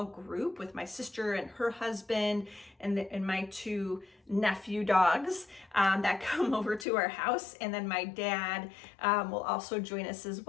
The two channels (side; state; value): right; drops out; at 6.9 s